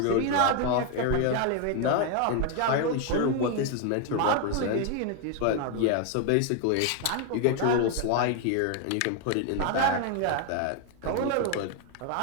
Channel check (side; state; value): both; different; correlation 0.01